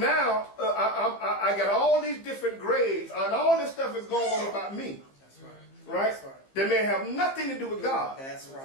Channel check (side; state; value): right; late; 15 ms